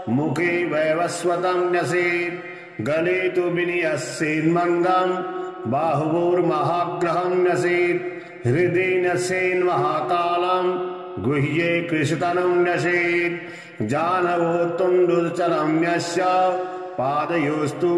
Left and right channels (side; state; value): both; identical; correlation 1.00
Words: मुखे वैवस्वतं न्यसेत् गले तु विनियस्येन्मन्दं बाहुवोर्महाग्रहं न्यसेत् हृदि न्यसेन्महाकालं गुह्ये कृशतनं न्यसेत् जानवो तुण्डुचरं न्यस्य पादयोस्तु